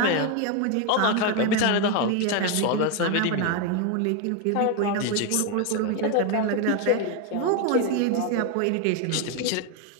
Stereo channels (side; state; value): both; different; correlation 0.01